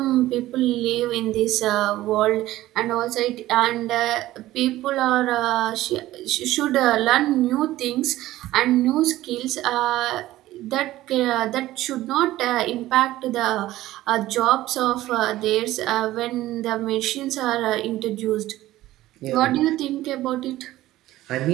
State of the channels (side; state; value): left; quieter; 15.7 dB